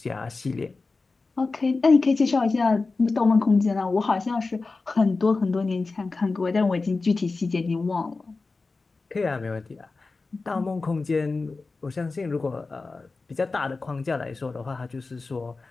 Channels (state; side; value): quieter; right; 3.9 dB